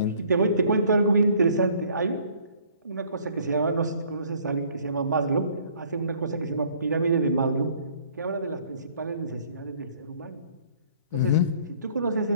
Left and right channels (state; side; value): inverted; both; correlation -0.58